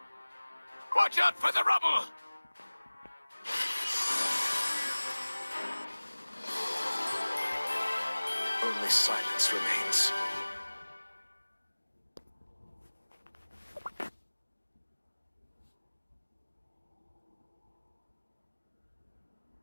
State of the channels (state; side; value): inverted; both; correlation -1.00